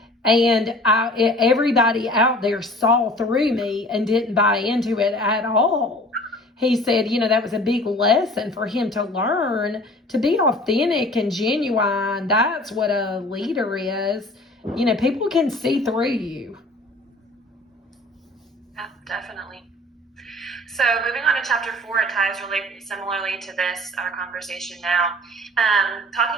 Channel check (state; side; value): normal; both; correlation 0.47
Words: And everybody out there saw through me and didn't buy into it at all. He said, that was a big lesson for him to learn to be authentic and genuine. That's what a leader is. People can see through you. Yeah, definitely. So moving on to chapter 4, it ties really similarly to our conversation now.